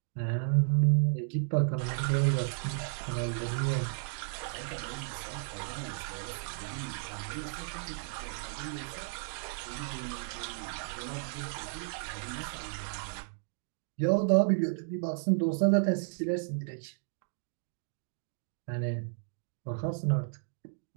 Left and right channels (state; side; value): silent; left; digital silence